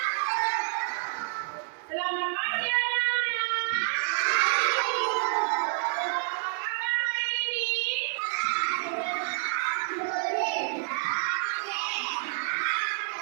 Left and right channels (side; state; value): left; silent; 59 dB below the other